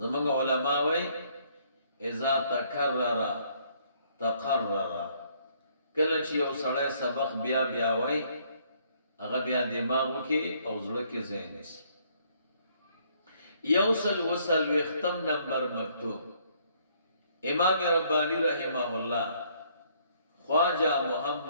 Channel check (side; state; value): both; inverted; correlation -0.65